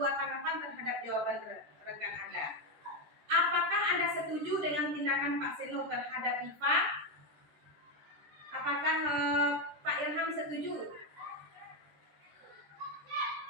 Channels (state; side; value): late; left; 13 ms